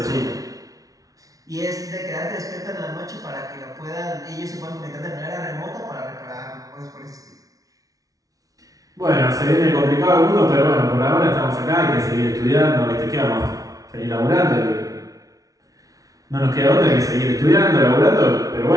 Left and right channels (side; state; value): left; late; 0.18 ms